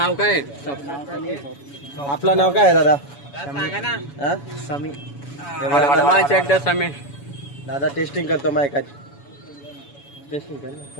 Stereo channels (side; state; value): right; late; 7.1 ms